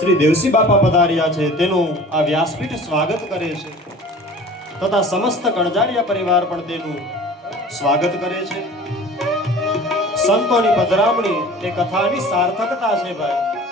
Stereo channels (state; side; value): normal; both; correlation 0.43